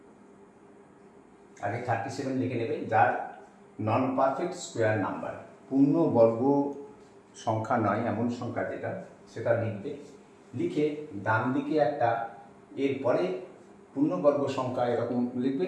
আগে 37 লিখে নেবে, যার নন পারফেক্ট স্কোয়ার নাম্বার, পূর্ণবর্গ সংখ্যা নয় এমন সংখ্যা যেটা, সেটা লিখবে। লিখে ডান দিকে একটা, এরপরে পূর্ণবর্গ সংখ্যা এরকম লিখবে,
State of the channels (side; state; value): both; identical; correlation 1.00